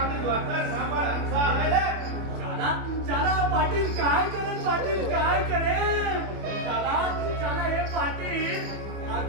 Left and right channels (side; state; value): left; late; 24 ms